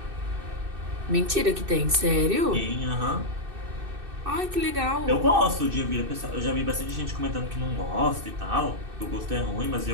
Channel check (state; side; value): late; left; 2.6 ms